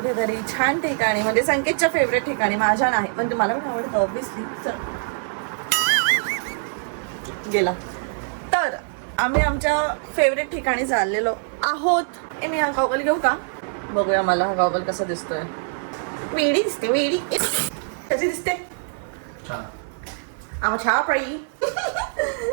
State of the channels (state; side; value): silent; left; 56 dB below the other